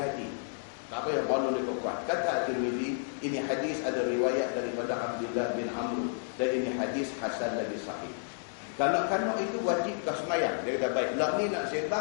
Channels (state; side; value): silent; right; digital silence